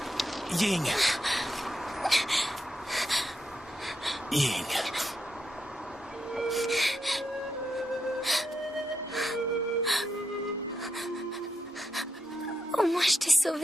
Ying. Ying. Au moins, je t'ai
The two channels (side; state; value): both; normal; correlation 0.83